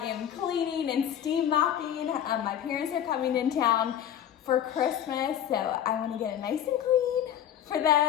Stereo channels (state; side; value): quieter; right; 10.3 dB